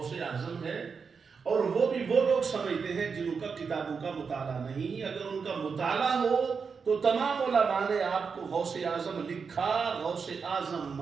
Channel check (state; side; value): quieter; left; 5.6 dB